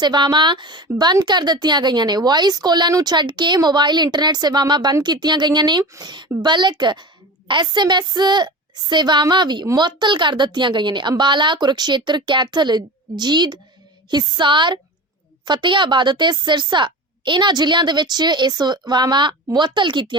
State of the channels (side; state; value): both; normal; correlation 0.30